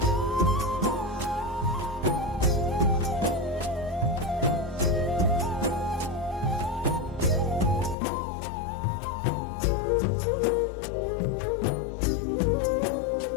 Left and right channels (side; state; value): right; drops out; at 8.0 s